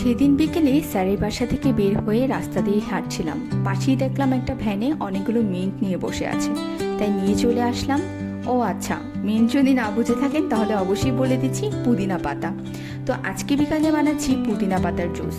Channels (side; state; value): both; identical; correlation 1.00